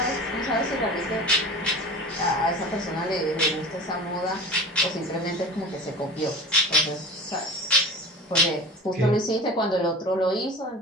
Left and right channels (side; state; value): both; normal; correlation 0.34